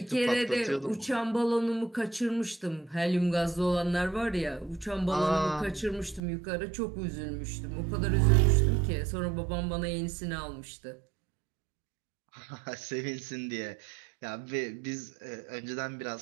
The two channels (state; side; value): drops out; left; at 6.2 s